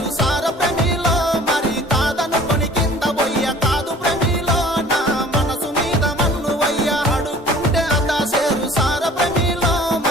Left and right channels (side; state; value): both; normal; correlation 0.50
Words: సార ప్రేమిలో మరి కాదనుకొని కింద పోయ్య కాదు ప్రేమిలో నా మనసు మీద మన్ను వయ్య అడుక్కుంటే అదా సేరు సార ప్రేమిలో